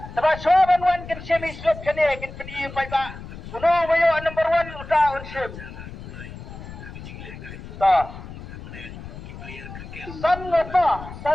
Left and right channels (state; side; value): noise; left; rumble, 13 dB below the sound